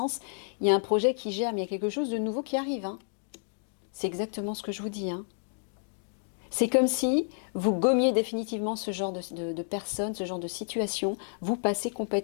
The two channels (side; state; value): right; silent; digital silence